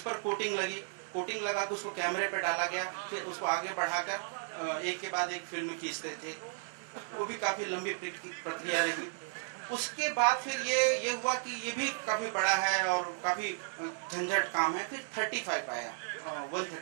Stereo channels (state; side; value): silent; left; digital silence